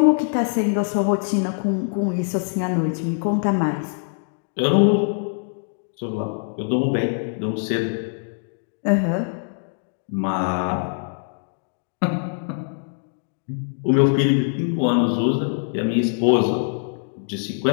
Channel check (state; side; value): silent; right; 63 dB below the other